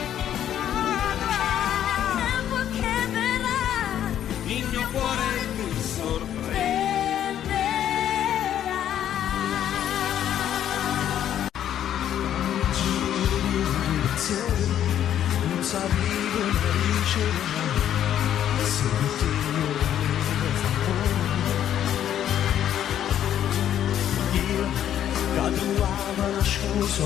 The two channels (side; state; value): right; quieter; 10.6 dB